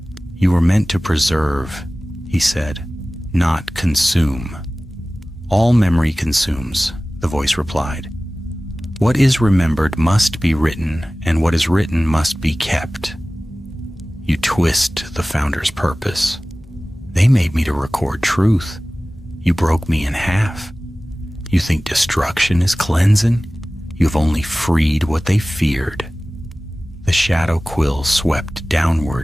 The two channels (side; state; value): both; normal; correlation 0.97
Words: You were meant to preserve, he said, not consume. All memory consumes, the voice replied. What is remembered must be written, and what is written must be kept. You twist the Founder's purpose. They made me to record truth. You broke me in half. You think destruction is cleansing? You've only freed what they feared. The shadow quill swept